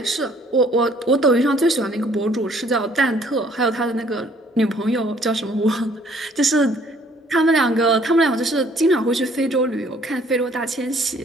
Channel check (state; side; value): normal; both; correlation 0.60